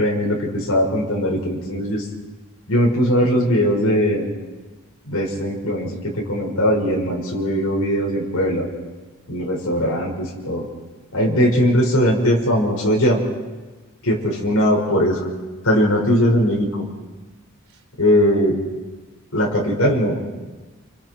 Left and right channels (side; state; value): both; normal; correlation 0.34